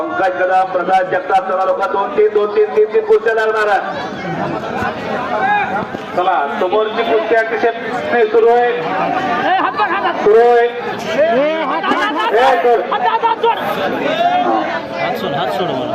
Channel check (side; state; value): both; identical; correlation 1.00